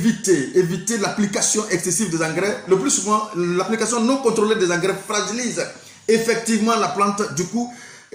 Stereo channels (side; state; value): both; identical; correlation 1.00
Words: l'application excessive des engrais. Le plus souvent, l'application non contrôlée des engrais fragilise effectivement la plante. Du coup,